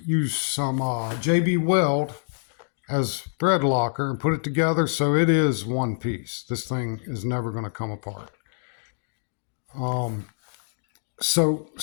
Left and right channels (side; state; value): right; silent; digital silence